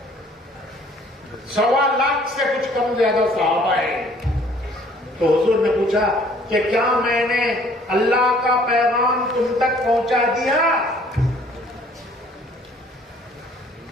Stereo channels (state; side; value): normal; both; correlation 0.57